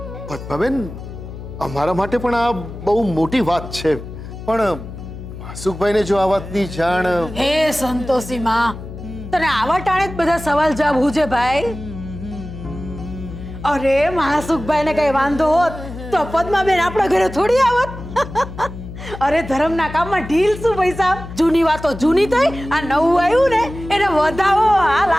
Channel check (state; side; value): noise; left; hum, 12 dB below the sound